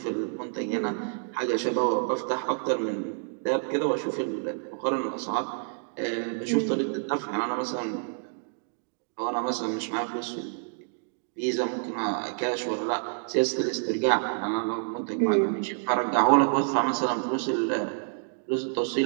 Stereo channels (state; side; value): silent; left; digital silence